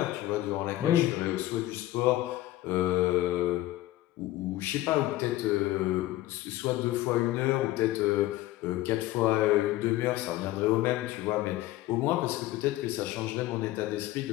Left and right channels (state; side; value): quieter; right; 16.0 dB